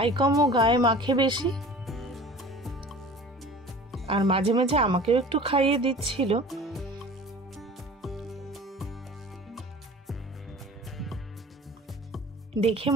কম ও গায়ে মাখে বেশি, আর মাঝে মাঝে আমাকেও একটু খাইয়ে দিচ্ছিল। দেখে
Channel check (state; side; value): normal; both; correlation 0.42